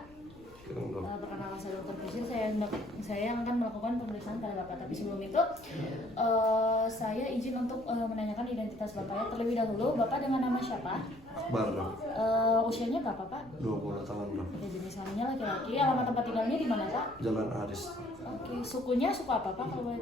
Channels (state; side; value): noise; left; rumble, 24 dB below the sound